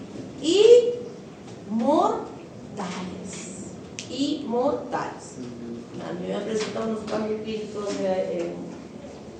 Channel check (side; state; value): both; identical; correlation 1.00